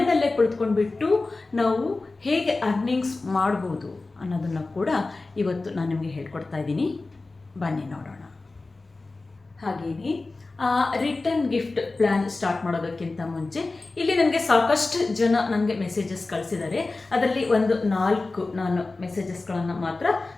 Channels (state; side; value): quieter; right; 3.4 dB